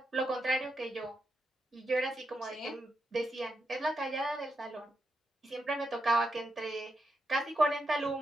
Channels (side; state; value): both; normal; correlation 0.84